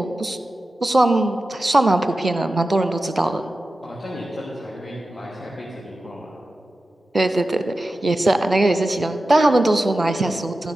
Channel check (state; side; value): normal; both; correlation 0.93